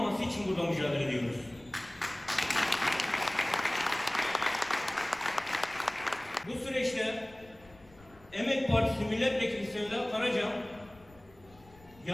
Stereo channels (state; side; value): noise; left; rumble, 25 dB below the sound